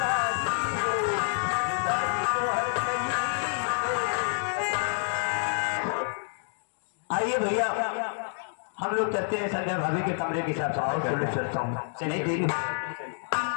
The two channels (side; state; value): right; silent; digital silence